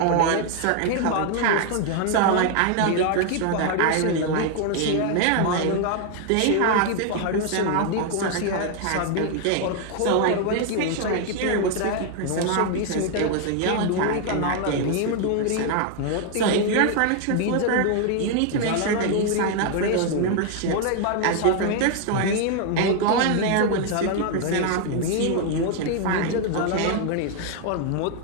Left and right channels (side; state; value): both; different; correlation 0.01